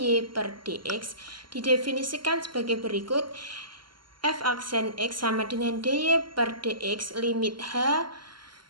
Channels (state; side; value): late; left; 0.72 ms